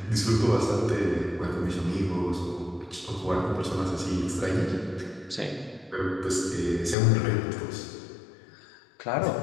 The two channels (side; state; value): right; drops out; at 7.0 s